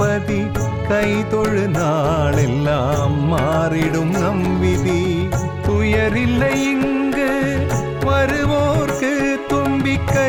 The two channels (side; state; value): both; identical; correlation 1.00